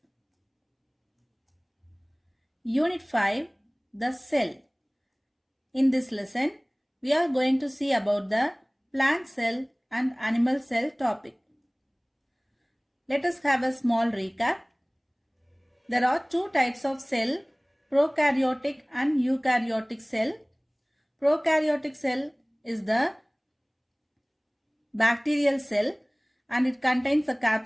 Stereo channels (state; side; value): identical; both; correlation 1.00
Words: Unit 5, The Cell. In this lesson, we are going to see about the plant cell and animal cell topic. Let us have a small recap. There are two types of cell, prokaryotic and eukaryotic cell. Prokaryotic cell is the bacterial cell and it contains a